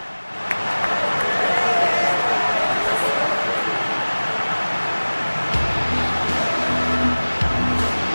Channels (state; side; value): inverted; both; correlation -1.00